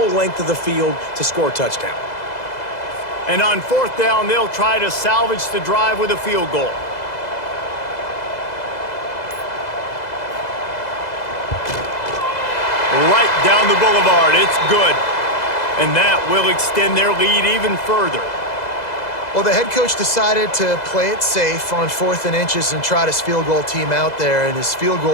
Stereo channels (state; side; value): late; right; 2.0 ms